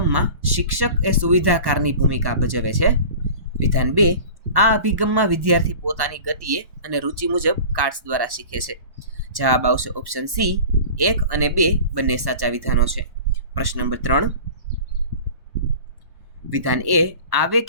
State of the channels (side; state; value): left; late; 1.1 ms